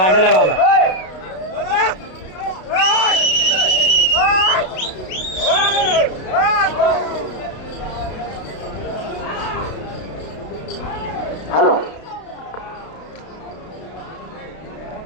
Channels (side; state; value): right; late; 32 ms